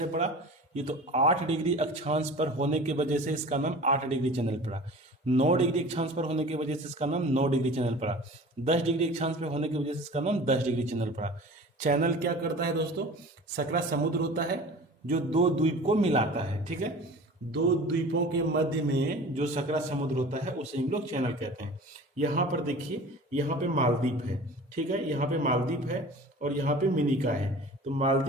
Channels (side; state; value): both; normal; correlation 0.40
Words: पड़ा? ये तो 8 डिग्री अक्षांश पर होने की वजह से इसका नाम 8 डिग्री चैनल पड़ा। 9 डिग्री अक्षांश पर होने की वजह से इसका नाम 9 डिग्री चैनल पड़ा। 10 डिग्री अक्षांश पर होने की वजह से इसका नाम 10 डिग्री चैनल पड़ा। चैनल क्या करता है दोस्तों? सकरा समुद्र होता है जो दो द्वीप को मिलाता है, ठीक है। दो द्वीपों के मध्य में जो सकरा समुद्र होता है उसे हम लोग चैनल कहते हैं। यहाँ पर देखिए, यहाँ पे मालदीव है, ठीक है, यहाँ पे मालदीव है और यहाँ पे मिनिका है। तो